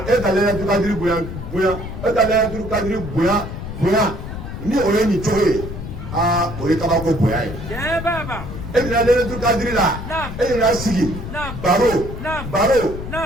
e ka Laylatul Qadr bonya ni o ye nin cogo ye. o ye kabako bonya ye. e bɛna Laylatul Qadr la e yɛrɛ sigi baro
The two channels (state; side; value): noise; left; rumble, 8 dB below the sound